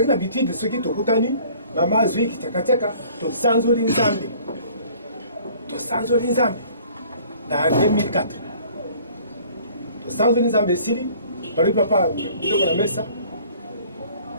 na habitude de ceux qui to kutani mama zui kitaka to sanzoli nzambe. To sanzoli nzambe. Na 2004. To sanzoli nzambe sili bali papa ndoko na mesa.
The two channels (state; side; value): inverted; both; correlation -0.53